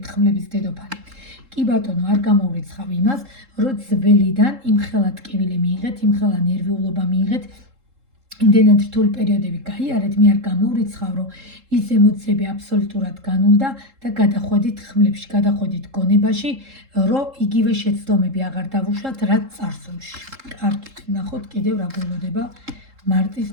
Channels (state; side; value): late; left; 3.7 ms